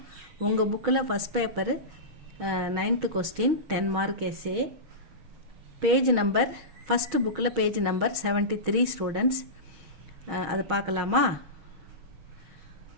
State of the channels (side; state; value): left; late; 6.3 ms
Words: உங்கள் புக்கில் first paper 9th question 10 mark SA. Page number first புக்கில் பேஜ் நம்பர் 73 ஸ்டூடெண்ட்ஸ். அது பார்க்கலாமா?